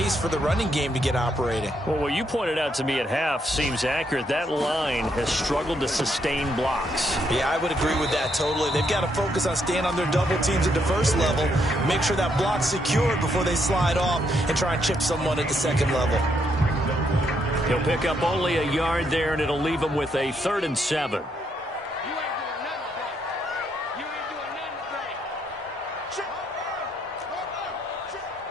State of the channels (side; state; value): both; normal; correlation 0.75